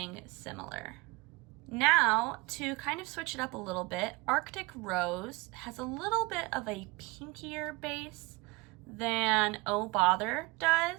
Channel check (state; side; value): quieter; left; 24.6 dB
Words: similar. Now, to kind of switch it up a little bit, Arctic Rose has a little bit of a pinkier base than Oh Bother